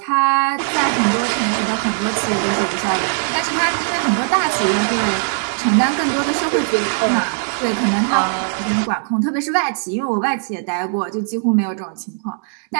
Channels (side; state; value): left; silent; digital silence